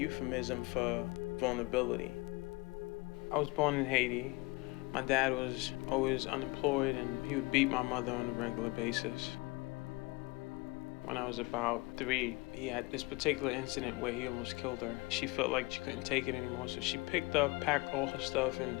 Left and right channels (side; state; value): right; quieter; 24.5 dB